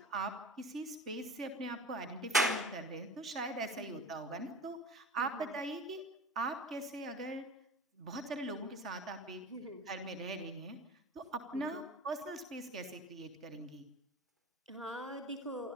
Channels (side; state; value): both; normal; correlation 0.36